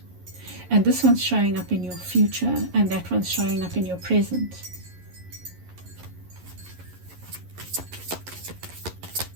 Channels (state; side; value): late; left; 11 ms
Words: And this one's showing up in your future, and that one's showing up in your present.